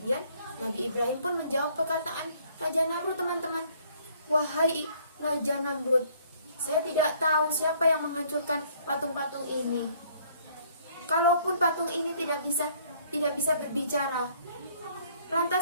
Nabi Ibrahim pun menjawab perkataan Raja Namrud teman-teman. Wahai Raja Namrud, saya tidak tahu siapa yang menghancurkan patung-patung ini. Kalaupun patung ini tidak bisa berbicara,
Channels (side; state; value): both; inverted; correlation -0.61